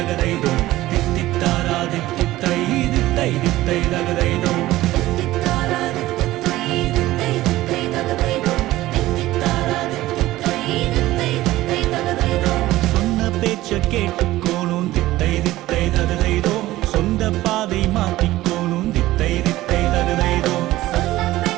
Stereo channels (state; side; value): quieter; left; 16.4 dB